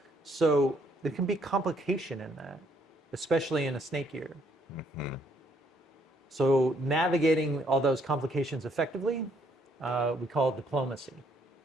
So there can be complication in that, especially in a snake year. So navigating all those complications effectively, we call diplomacy.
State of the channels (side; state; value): both; normal; correlation 0.68